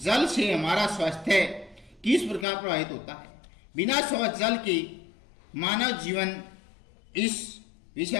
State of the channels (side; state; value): right; drops out; at 2.5 s